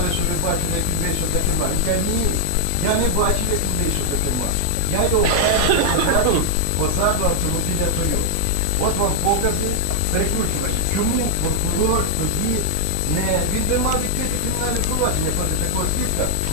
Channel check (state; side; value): different; both; correlation 0.00